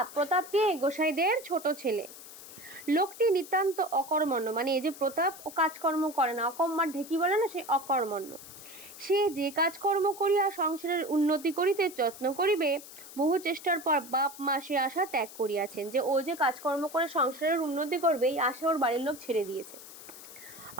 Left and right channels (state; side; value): noise; left; hiss, 16 dB below the sound